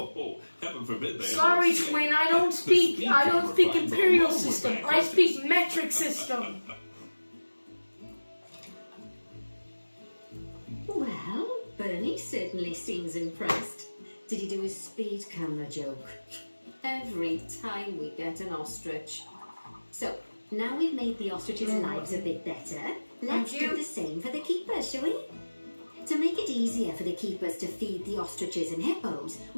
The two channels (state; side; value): inverted; both; correlation -1.00